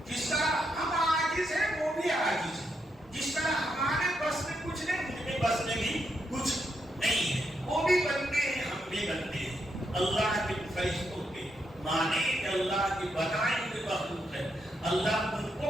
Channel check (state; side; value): normal; both; correlation 0.80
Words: جس طرح ہم عاجز ہیں وہ بھی عاجز ہیں، جس طرح ہمارے بس میں کچھ نہیں، ان کے بس میں بھی کچھ نہیں ہے، وہ بھی بنتے ہیں، ہم بھی بنتے ہیں۔ اللہ کے فرشتوں کے مانے کہ اللہ کی بنائی ہوئی مخلوق ہے، اللہ ان کو